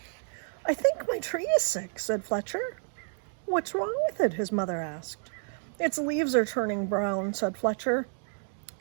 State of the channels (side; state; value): left; silent; 58 dB below the other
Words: "I think my tree is sick," said Fletcher. "What's wrong with it?" his mother asked. "Its leaves are turning brown," said Fletcher.